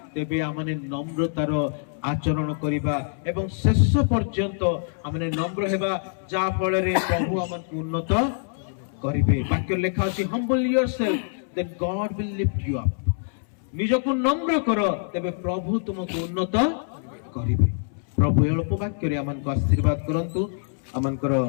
ତେବେ ଆମେ ନମ୍ରତାର ଆଚରଣ କରିବା ଏବଂ ଶେଷ ପର୍ଯ୍ୟନ୍ତ ଆମେ ନମ୍ର ହେବା, ଯାହା ଫଳରେ ପ୍ରଭୁ ଆମକୁ ଉନ୍ନତ କରିବେ। ବାକ୍ୟ ଲେଖା ଅଛି, humble yourself then God will lift you up। ନିଜକୁ ନମ୍ର କର, ତେବେ ପ୍ରଭୁ ତୁମକୁ ଉନ୍ନତ କରିବେ। ପ୍ରଭୁ ଏ ଅଳ୍ପ ବାକ୍ୟରେ ଆମମାନଙ୍କୁ ଆଶୀର୍ବାଦ କରନ୍ତୁ। ଆମଙ୍କର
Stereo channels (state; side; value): silent; right; 62 dB below the other